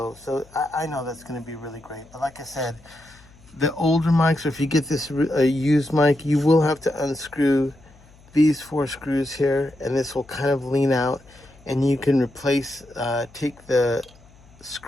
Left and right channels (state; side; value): noise; left; hum, 26 dB below the sound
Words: So I know that's going to be really great. But like I said, the older mics, or if you get this used mic, you will have to unscrew these 4 screws here, and this will kind of lean out, and you can replace, take the